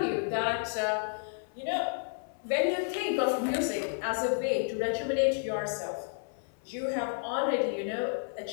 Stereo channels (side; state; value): right; silent; 57 dB below the other